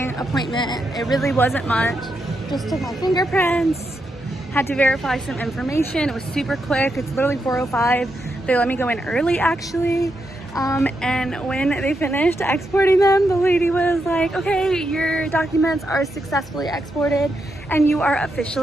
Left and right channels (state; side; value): normal; both; correlation 0.83